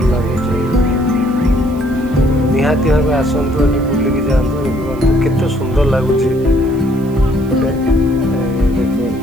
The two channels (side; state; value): right; noise; hiss, 25 dB below the sound